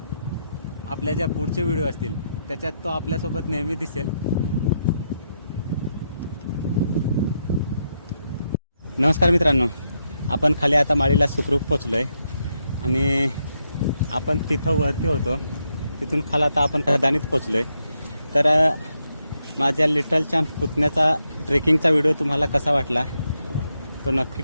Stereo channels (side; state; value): both; inverted; correlation -0.81